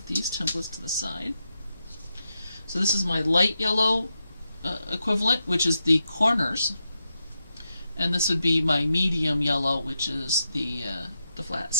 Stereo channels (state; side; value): inverted; both; correlation -0.86